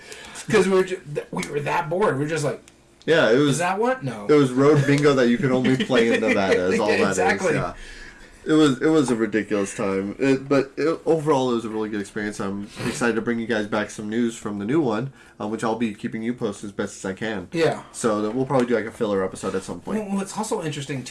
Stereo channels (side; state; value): both; identical; correlation 1.00